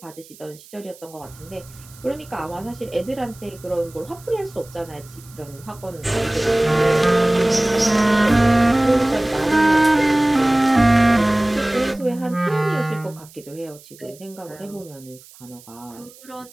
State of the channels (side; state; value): right; noise; hiss, 23 dB below the sound